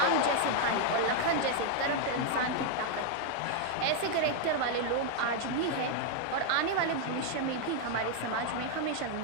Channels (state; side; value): different; both; correlation 0.00